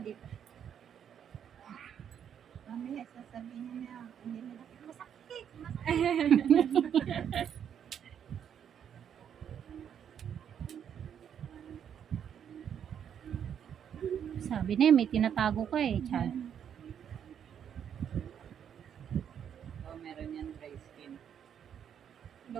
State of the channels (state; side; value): quieter; left; 8.6 dB